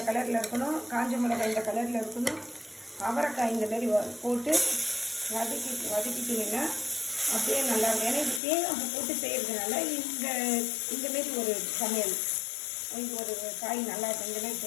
கலரில் இருக்கணும், காஞ்ச மிளகாய் இந்த கலரில் இருக்கணும், அவரைக்காய் இந்த மாதிரி போட்டு வதக்கிட்டிங்கன்னா அப்படியே நல்லா இருக்கும். ஏன்னா இது தேங்காய் போட்டு செய்கிறதுனால இந்தமாரி ஒரு சமையல், இது ஒரு காய் நல்லா இருக்கும். இந்த மாதிரி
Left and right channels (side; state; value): right; drops out; at 8.4 s